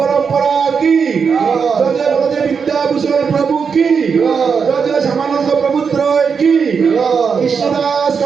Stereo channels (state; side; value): quieter; left; 6.0 dB